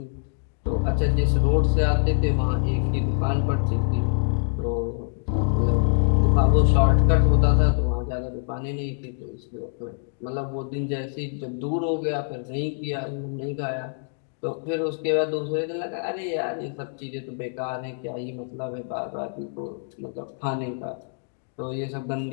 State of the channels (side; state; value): right; silent; digital silence